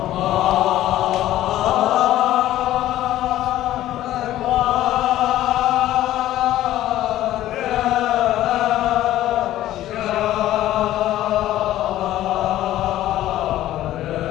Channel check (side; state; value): right; quieter; 13.9 dB